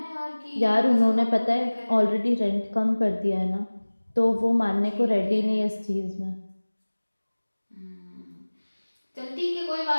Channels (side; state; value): both; inverted; correlation -1.00